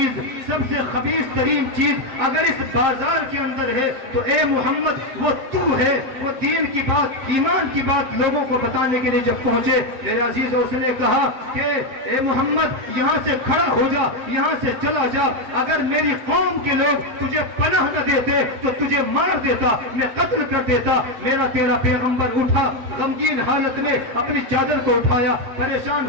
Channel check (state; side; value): late; left; 7.5 ms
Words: سب سے خبیث ترین چیز اگر اس بازار کے اندر ہے تو اے محمد وہ تو ہے۔ وہ دین کی بات، ایمان کی بات لوگوں کو بتانے کے لیے جب پہنچے، میرے عزیز، اس نے کہا کہ اے محمد یہاں سے کھڑا ہو جا، یہاں سے چلا جا، اگر میری قوم کے لوگ تجھے پناہ نہ دیتے تو تجھے مار دیتا، میں قتل کر دیتا۔ میرا تیرا پیغمبر اٹھا، غمگین حالت میں اپنی چادر کو اٹھایا، پریشان